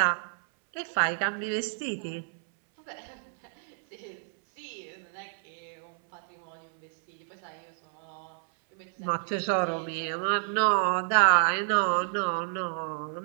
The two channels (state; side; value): silent; left; 58 dB below the other